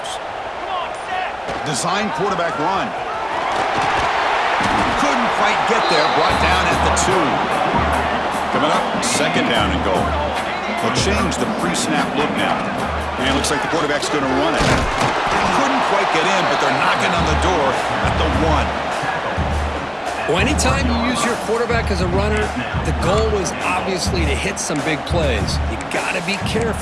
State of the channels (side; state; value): both; identical; correlation 1.00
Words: Design quarterback run. Couldn't quite get there. Brought down at the 2. Coming up, second down and goal. They'll change the pre-snap look now. And it looks like the quarterback's going to run it. Couldn't quite get in, but they're knocking on the door at the 1. Well, anytime you use your quarterback as a runner, the goal is obviously to hit some big plays. You got to be